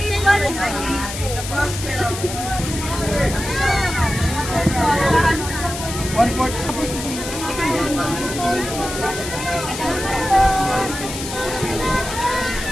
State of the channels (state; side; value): noise; left; hiss, 8 dB below the sound